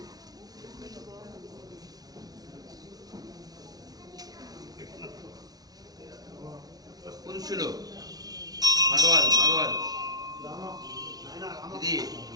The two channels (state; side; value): late; left; 0.19 ms